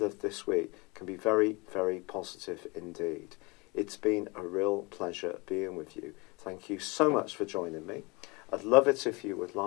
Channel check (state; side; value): quieter; right; 27.0 dB